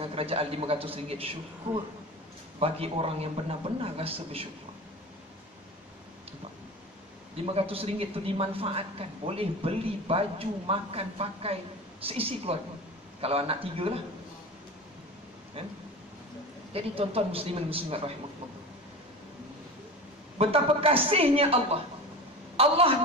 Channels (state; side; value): normal; both; correlation 0.31